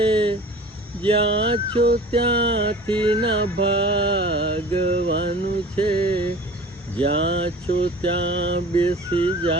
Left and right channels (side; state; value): both; normal; correlation 0.42